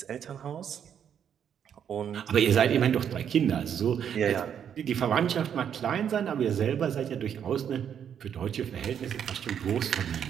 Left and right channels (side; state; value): left; quieter; 8.6 dB